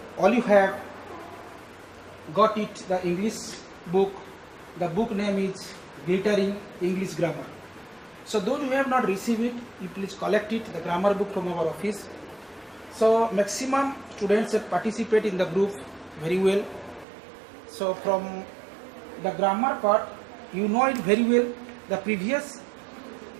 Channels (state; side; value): drops out; left; at 17.1 s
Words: all you have got it, the English book. The book name is Glittering English Grammar. So those who have not received it, you please collect it, the grammar book from our office. So maximum students participate in the group very well. So from the grammar part, you know it very well. The previous